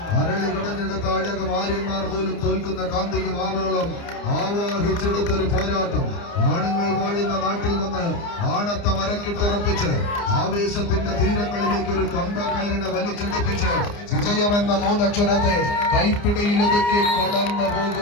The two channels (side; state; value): right; late; 29 ms